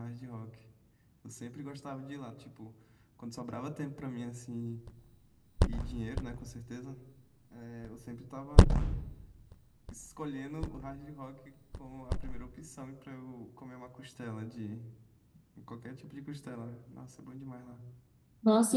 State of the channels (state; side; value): identical; both; correlation 1.00